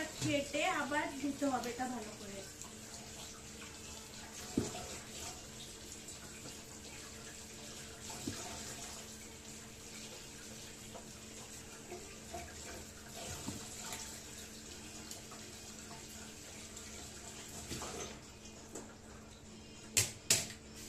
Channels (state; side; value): identical; both; correlation 1.00